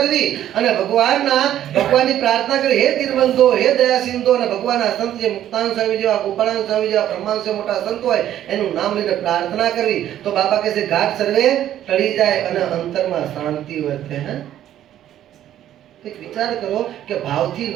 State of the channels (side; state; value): left; quieter; 11.7 dB